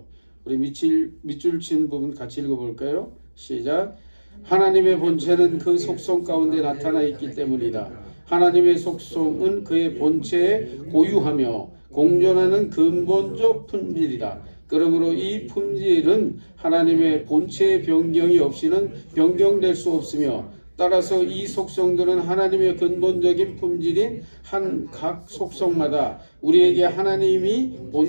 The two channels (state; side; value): inverted; both; correlation -1.00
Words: 우리 밑줄 친 부분 같이 읽어볼까요? 시작. 하나님의 본체는 그 속성 가운데 나타나 있기 때문이다. 하나님의 속성은 그의 본체에 고유하며 공존하는 근본적 품질이다. 그러므로 이 품질은 하나님의 본체의 변경이 없이는 변경될 수 없으며 따라서 이 속성들은 하나님의 근본적인 품질인 각 속성마다 우리에게 하나님이